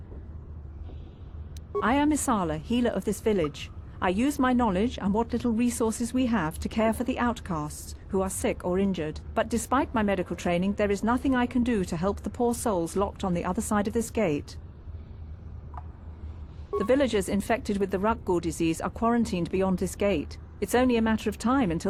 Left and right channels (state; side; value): identical; both; correlation 1.00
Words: I am Isala, healer of this village. I use my knowledge and what little resources we have to care for the outcasts who are sick or injured. But despite my medical training, there is nothing I can do to help the poor souls locked on the other side of this gate. The villagers infected with the Rukgul disease are quarantined beyond this gate. It's only a matter of time